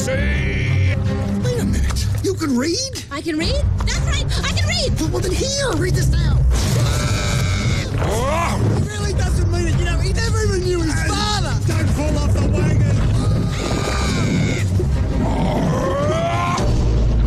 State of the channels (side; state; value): both; identical; correlation 1.00